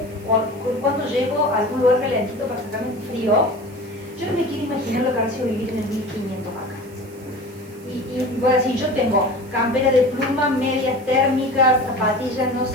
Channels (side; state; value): right; noise; hiss, 25 dB below the sound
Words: cuando llego a algún lugar calentito para sacarme un frío, yo no me quiero imaginar lo que ha sido vivir en el 1500 acá. Y voy a decir, yo tengo campera de pluma, medias térmicas, zapatillas, no